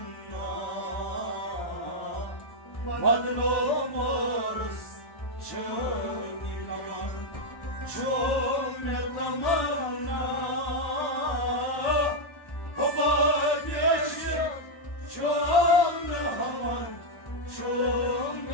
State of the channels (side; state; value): right; late; 1.1 ms